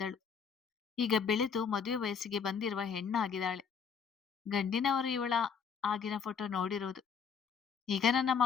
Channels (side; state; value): right; quieter; 6.5 dB